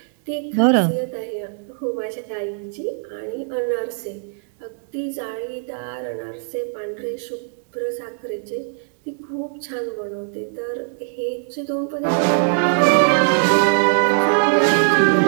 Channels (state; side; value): silent; left; digital silence